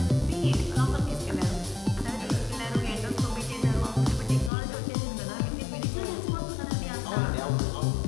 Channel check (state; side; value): drops out; right; at 4.5 s